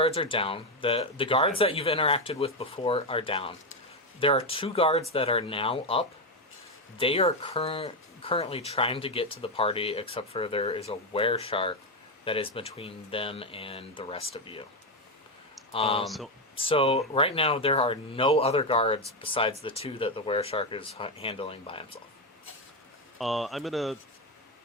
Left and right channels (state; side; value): normal; both; correlation 0.08